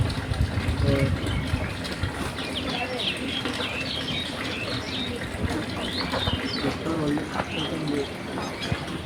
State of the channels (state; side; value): identical; both; correlation 1.00